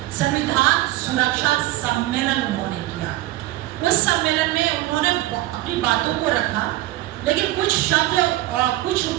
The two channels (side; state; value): left; quieter; 16.8 dB